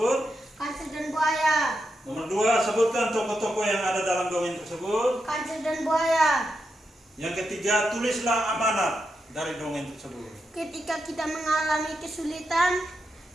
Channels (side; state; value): both; normal; correlation 0.86